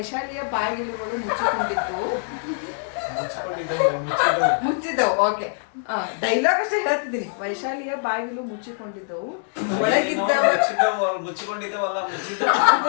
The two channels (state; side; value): silent; right; digital silence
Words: ಬಾಗಿಲುಗಳು ಮುಚ್ಚಿದ್ದವು. ಓಕೆ, ಡೈಲಾಗ್ ಅಷ್ಟೇ ಹೇಳ್ತಿದ್ದೀನಿ. ವೈಶಾಲಿಯ ಬಾಗಿಲು ಮುಚ್ಚಿಕೊಂಡಿದ್ದವು,